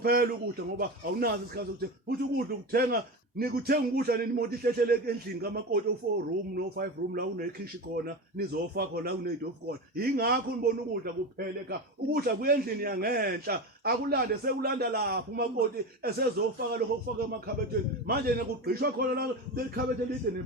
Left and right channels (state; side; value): normal; both; correlation 0.23